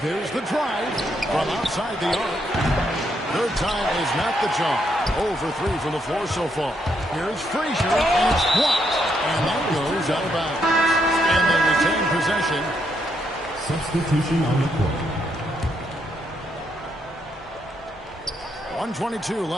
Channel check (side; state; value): both; normal; correlation 0.77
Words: there's the drive from outside the arc. Third time is not the charm. 0 for 3 from the floor so far. Here's Frazier, and it's blocked. And that goes out of bounds. And they retain possession. Substitution on the court. 1:22